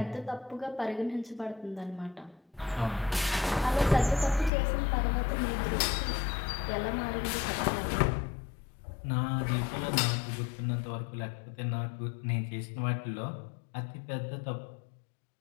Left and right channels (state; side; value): drops out; right; at 4.5 s